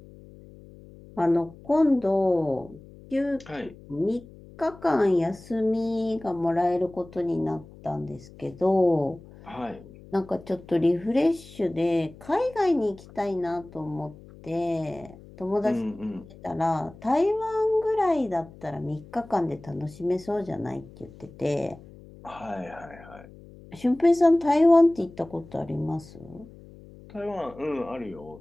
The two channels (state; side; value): noise; left; hum, 20 dB below the sound